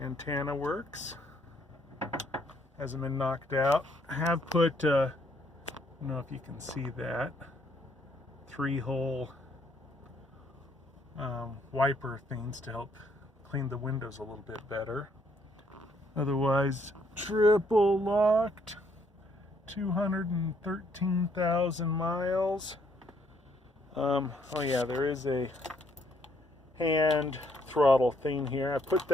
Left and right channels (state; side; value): normal; both; correlation 0.69